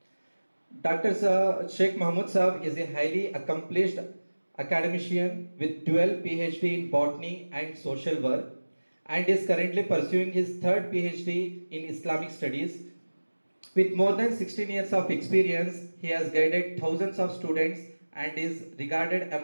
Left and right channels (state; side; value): inverted; both; correlation -1.00